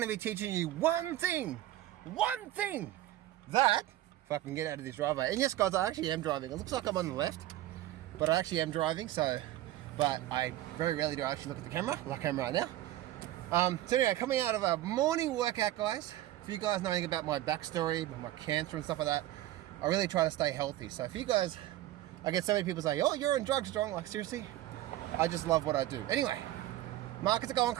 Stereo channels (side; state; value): left; quieter; 14.6 dB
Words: to be teaching you one thing that, if I can get out of this driveway. And yes, guys, I actually am driving. It looks like I'm on the left, but I actually am driving. But I very rarely do I actually look at the camera, like I am right now. So anyway, coming out of a morning workout, guys. For you guys knowing about my backstory, my cancer and stuff like that, I really try to stay healthy. So if you guys, I get so many people say, "Oh, you're on drugs, Strong." Like, seriously? I just love what I do. Anyway, markets are going